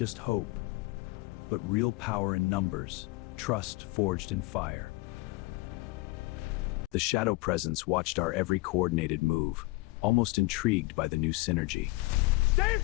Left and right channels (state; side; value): quieter; right; 23.3 dB